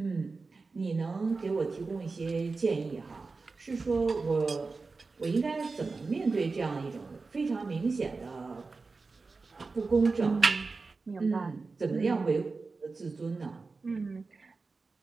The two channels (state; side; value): quieter; left; 4.1 dB